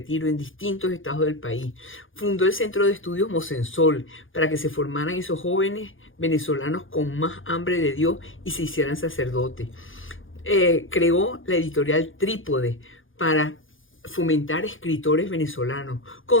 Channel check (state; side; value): late; right; 0.58 ms